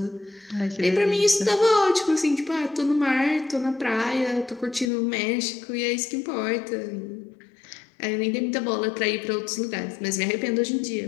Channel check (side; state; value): right; drops out; at 4.9 s